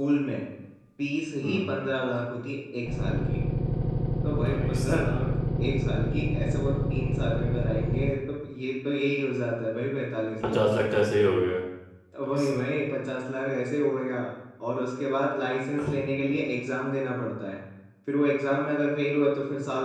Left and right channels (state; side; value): identical; both; correlation 1.00